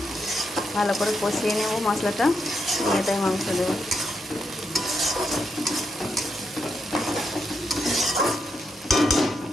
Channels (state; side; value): normal; both; correlation 0.82